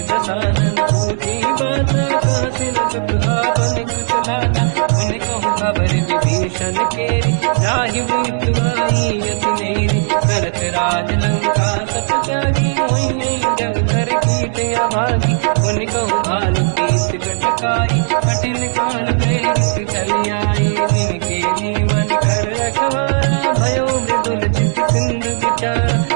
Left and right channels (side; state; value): left; silent; 69 dB below the other